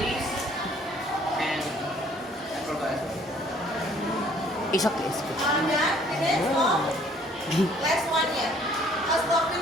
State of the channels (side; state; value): both; normal; correlation 0.59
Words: and I forgot. It's okay. Done? Finish? No? Last one, yeah. I'll stop